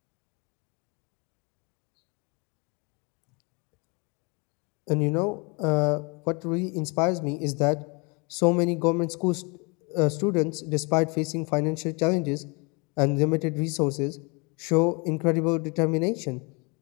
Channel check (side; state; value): right; quieter; 30.7 dB